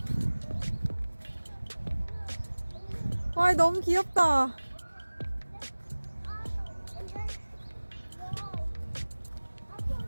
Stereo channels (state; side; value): inverted; both; correlation -1.00